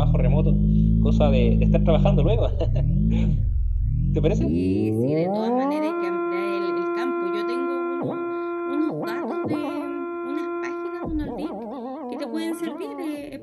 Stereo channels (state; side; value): identical; both; correlation 1.00